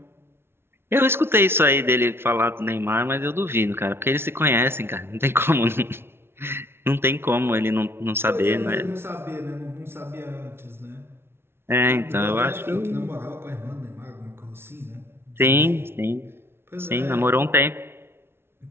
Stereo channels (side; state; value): left; late; 0.12 ms